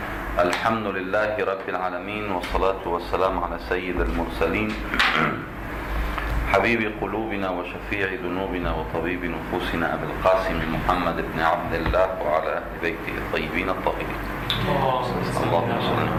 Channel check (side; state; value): both; identical; correlation 1.00